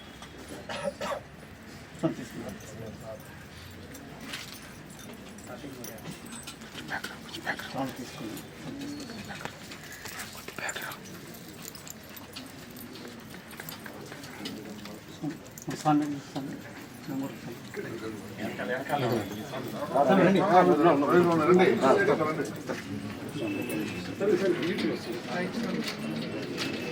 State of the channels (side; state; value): both; identical; correlation 1.00